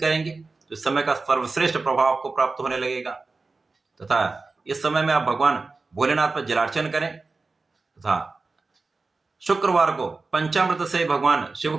करेंगे तो इस समय का सर्वश्रेष्ठ प्रभाव आपको प्राप्त होने लगेगा तथा इस समय में आप भगवान भोलेनाथ पर जलार्चन करें तथा शुक्रवार को पंचामृत से भगवान शिव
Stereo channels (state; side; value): quieter; left; 3.8 dB